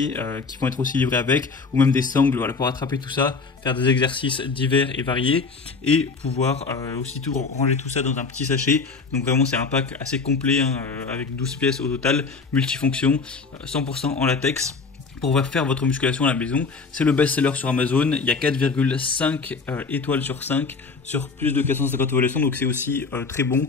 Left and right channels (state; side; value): quieter; right; 4.5 dB